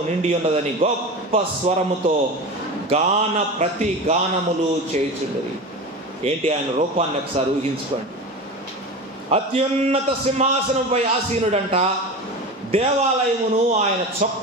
నిండి ఉన్నదని గొప్ప స్వరముతో ప్రతి గానములు చేయుచుండరి. ఏంటి ఆయన రూపాన్ని ఒకసారి ఊహించుకోండి. అత్యున్నత సింహాసనంపై ఆసీనుడంట. దేవాలయమును ఆయన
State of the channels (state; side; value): normal; both; correlation 0.28